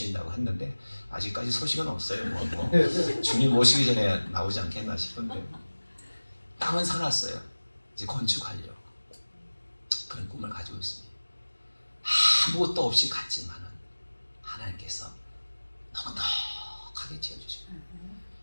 했는데 아직까지 소식은 없어요. 뭐 주님 오시기 전에 나오지 않겠나 싶은데 땅은 사놨어요. 이제 건축하려고 그런 꿈을 가지고 있습니다. 아무것도 없이 갔지만은 하나님께서 넉넉하게 지어주시고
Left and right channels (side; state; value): both; inverted; correlation -1.00